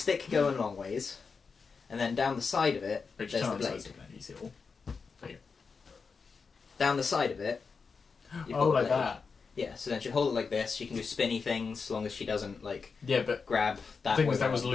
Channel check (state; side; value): quieter; right; 5.1 dB